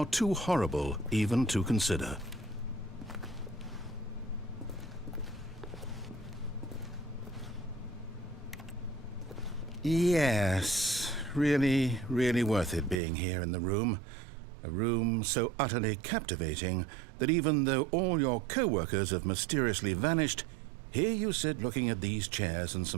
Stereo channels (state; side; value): drops out; left; at 13.0 s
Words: too horrible even to consider. Yes, really, really worth it being here in the room. A room so utterly captivating that even though all your co-workers have mysteriously vanished, here you sit looking at these chairs and